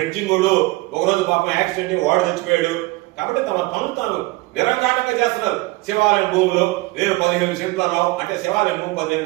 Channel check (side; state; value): left; quieter; 21.7 dB